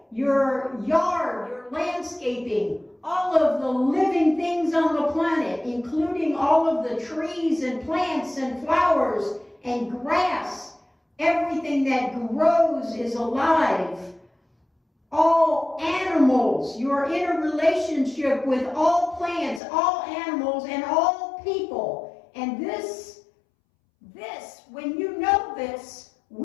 your yard, your landscaping, all of the living things on the planet, including all of the trees and plants and flowers and grass. Everything that grows is alive. All animals, you're in a relationship with all plants, all animals, and all people. And this, when you know this,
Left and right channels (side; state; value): right; drops out; at 19.6 s